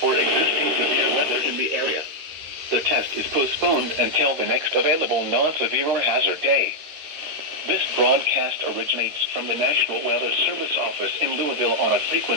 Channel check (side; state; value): left; late; 13 ms